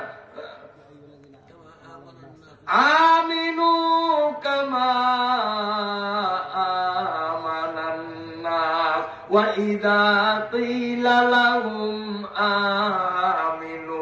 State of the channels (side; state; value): both; identical; correlation 1.00